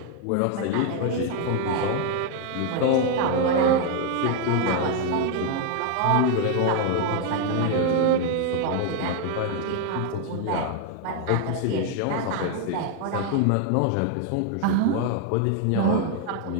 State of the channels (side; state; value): both; different; correlation 0.00